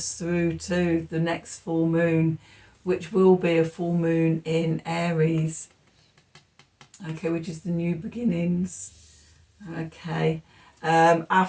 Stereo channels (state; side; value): identical; both; correlation 1.00